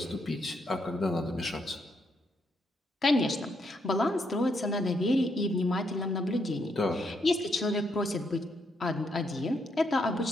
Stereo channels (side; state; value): both; normal; correlation 0.77